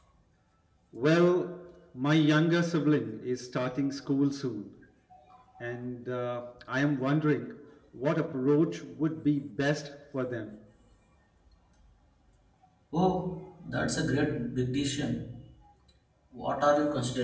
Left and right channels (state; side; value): identical; both; correlation 1.00